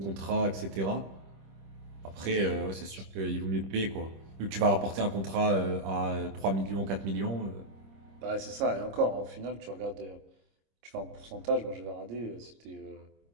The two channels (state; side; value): late; left; 26 ms